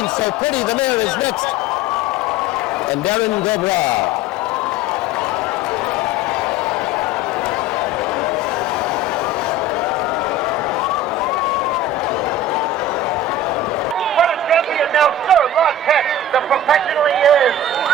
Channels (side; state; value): both; normal; correlation 0.36